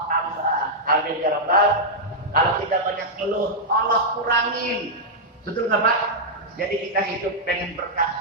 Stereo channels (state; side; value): normal; both; correlation -0.06